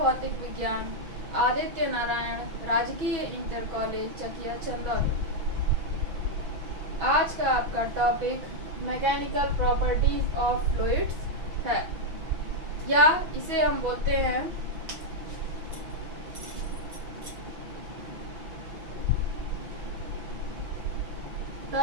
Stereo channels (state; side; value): late; left; 6.0 ms